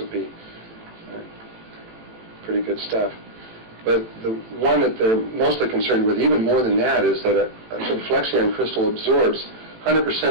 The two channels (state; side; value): late; left; 18 ms